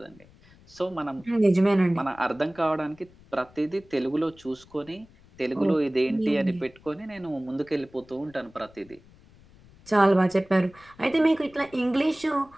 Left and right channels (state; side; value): noise; left; rumble, 26 dB below the sound